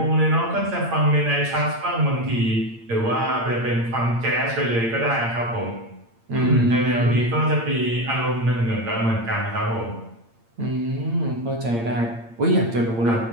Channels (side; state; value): left; late; 8.7 ms